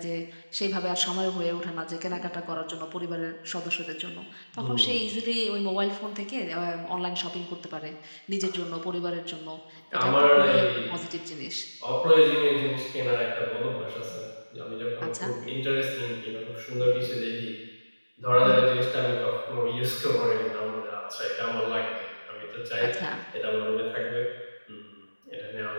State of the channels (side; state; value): both; inverted; correlation -1.00